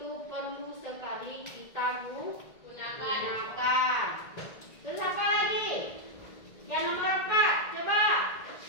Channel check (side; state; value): right; late; 1.8 ms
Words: perlu sekali kita gunakan. Terus apa lagi? Yang nomor 4, coba.